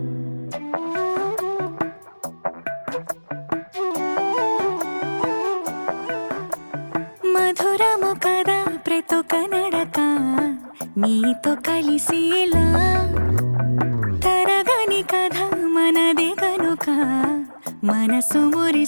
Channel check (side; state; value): both; inverted; correlation -1.00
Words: మధురము కదా ప్రతొక నడక నీతో కలిసేలా తరగని కథ మనదే కనుక మనసు